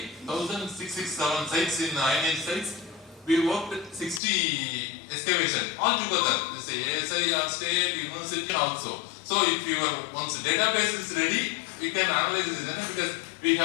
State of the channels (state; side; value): drops out; right; at 4.2 s